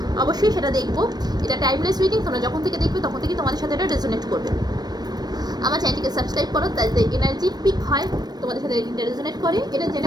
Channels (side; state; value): left; late; 0.19 ms